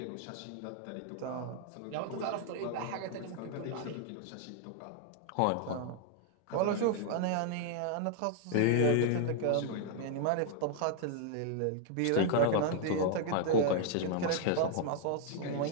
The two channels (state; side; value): different; both; correlation -0.01